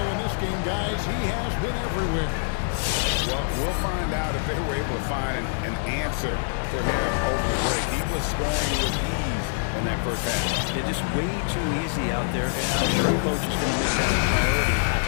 in this game, guys, he has been everywhere. Well, we'll find out if they were able to find an answer for him over the break. He was scoring with ease in that first half. Yeah, just way too easy out there, and I'm sure coach is going to make that a priority at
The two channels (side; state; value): right; silent; 62 dB below the other